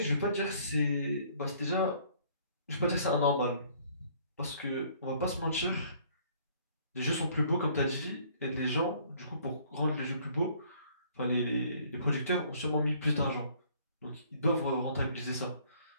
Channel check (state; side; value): inverted; both; correlation -0.59